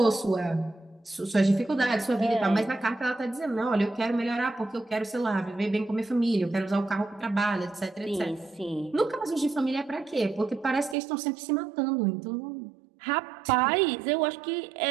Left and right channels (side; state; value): left; drops out; at 11.0 s